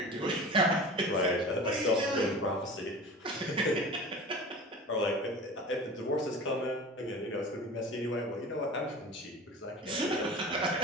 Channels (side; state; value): both; normal; correlation 0.36